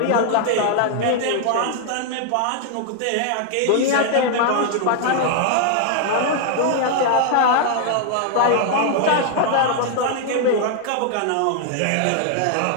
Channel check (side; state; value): both; different; correlation 0.00